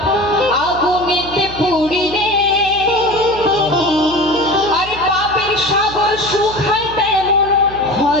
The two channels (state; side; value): noise; right; hum, 14 dB below the sound